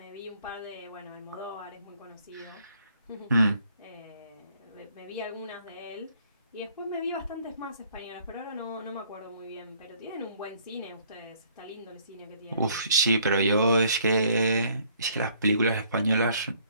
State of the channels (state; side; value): inverted; both; correlation -0.62